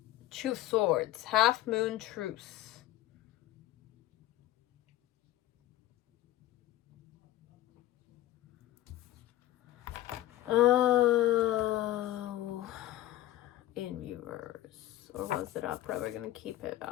Two Swords, Half Moon Truce. Oh, in reverse. Or was it upright? We're going to keep it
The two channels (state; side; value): quieter; right; 14.8 dB